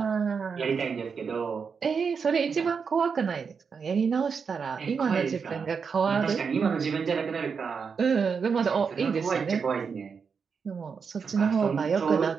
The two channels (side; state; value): left; quieter; 5.9 dB